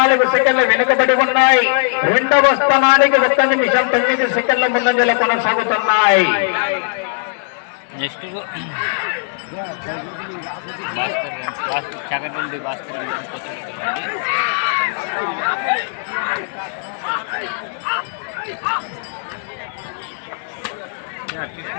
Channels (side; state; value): right; silent; digital silence